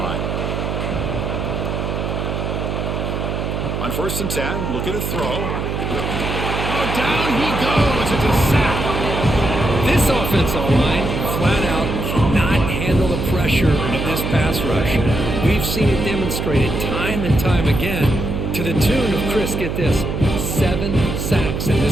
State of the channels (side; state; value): right; noise; hum, 2 dB below the sound